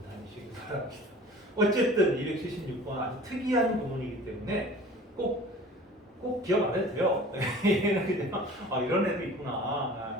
다니시기 바랍니다. 어쨌든 276번 아주 특이한 구문이기 때문에 꼭 기억 안 해도 돼요. 얘는 그냥 이런 애도 있구나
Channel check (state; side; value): normal; both; correlation 0.44